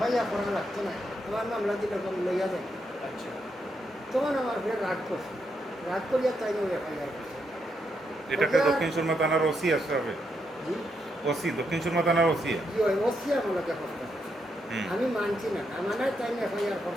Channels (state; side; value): normal; both; correlation 0.80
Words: করা লাগতো না আমার মামলা দিলে লইয়া দেন তখন আমার ফের রাগ করছে রাগ করিয়া তাই এফআইআর করছে এটাকে দক্ষিণ সুরমা থানার ওসি আসবে জি ওসি দক্ষিণ সুরমা থানার ওসি জি হয় ওসি আমাকে কষ্ট আমি মানছি না আমার তাই এফআইআর